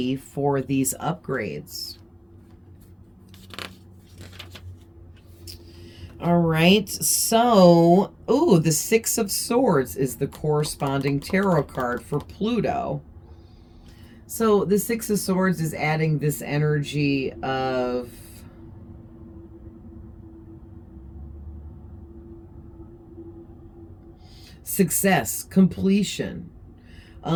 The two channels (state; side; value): identical; both; correlation 1.00